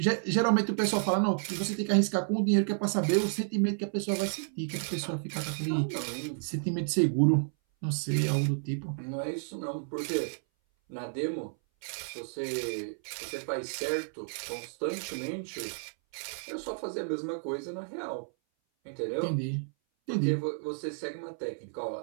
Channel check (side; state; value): left; silent; 57 dB below the other